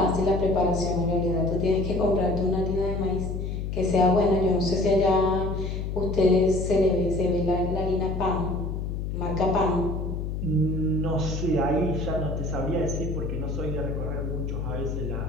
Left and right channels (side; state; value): left; noise; hum, 3 dB below the sound